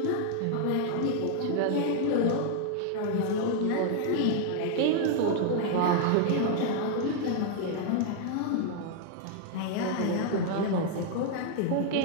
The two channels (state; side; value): different; both; correlation 0.00